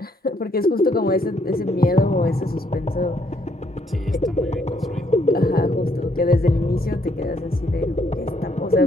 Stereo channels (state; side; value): normal; both; correlation 0.70